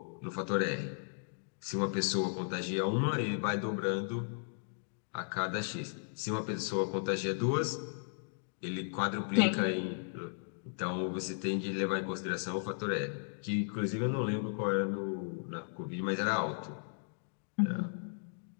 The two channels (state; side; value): silent; right; digital silence